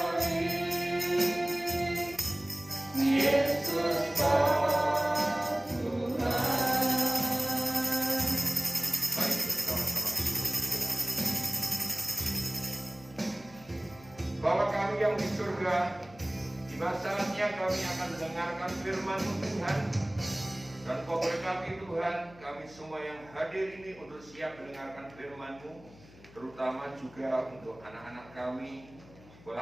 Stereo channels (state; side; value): noise; left; hum, 22 dB below the sound